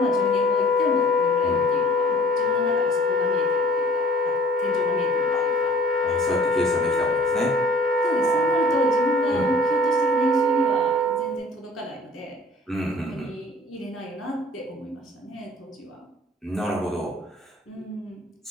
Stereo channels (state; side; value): normal; both; correlation 0.52